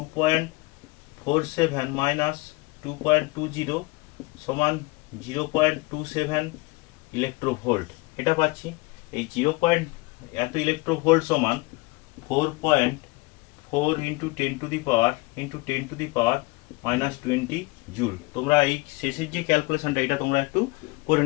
মাইনাস 2.20 সমান 0.27 ইলেকট্রোভোল্ট, এটা পাচ্ছি। এই এত ইলেকট্রোভোল্ট সমান 4.4 into 10 to the power -20 joule. তোমরা এই শেষের যে ক্যালকুলেশনটা এটা তোমরা একটু করে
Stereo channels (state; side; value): quieter; right; 24.5 dB